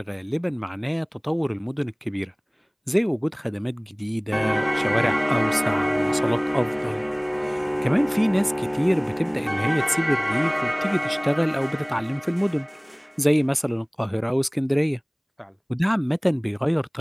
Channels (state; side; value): identical; both; correlation 1.00